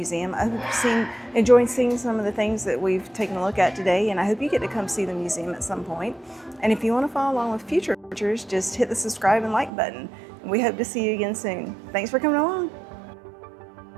I hope you've enjoyed seeing some of the things that we've taken a look at today, and I hope you get to come see the museum at some point. And if you want to follow along with future tours, just hit the subscribe and like button. And we hope to see you again soon. Thanks for coming along.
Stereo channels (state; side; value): drops out; left; at 9.7 s